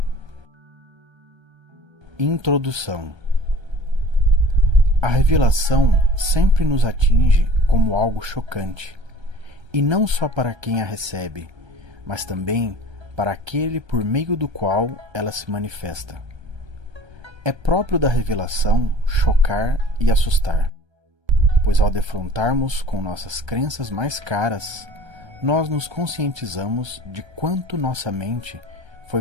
Introdução. A revelação sempre nos atinge como algo chocante, e não só para quem a recebe, mas também para aquele por meio do qual ela se manifesta. É próprio da revelação chocar e assustar, pois ao defrontarmos com nossas crenças mais caras, nós nos conscientizamos de quanto nossa mente foi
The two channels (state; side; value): late; left; 1.3 ms